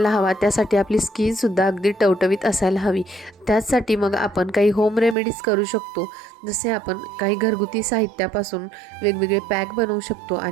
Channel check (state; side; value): drops out; left; at 5.2 s